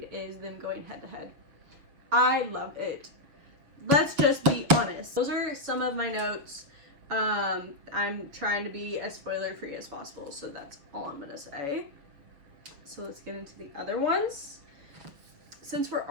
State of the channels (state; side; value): late; left; 7.0 ms